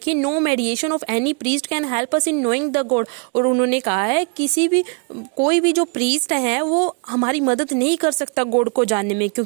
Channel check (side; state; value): left; quieter; 37.1 dB